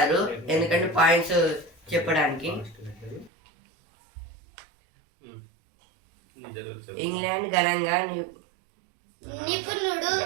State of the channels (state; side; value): drops out; left; at 3.3 s